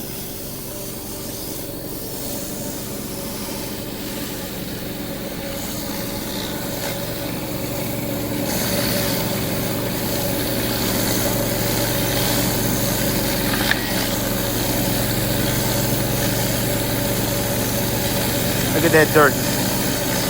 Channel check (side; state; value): right; noise; rumble, 17 dB below the sound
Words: Look at that dirt.